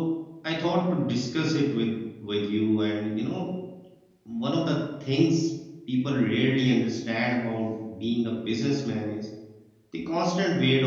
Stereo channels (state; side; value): identical; both; correlation 1.00